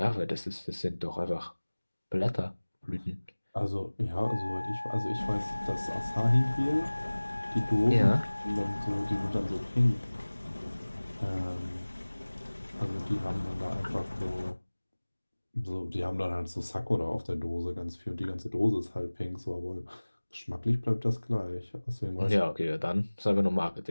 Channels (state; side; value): inverted; both; correlation -1.00